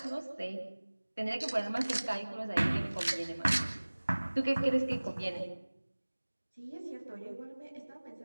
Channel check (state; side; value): inverted; both; correlation -1.00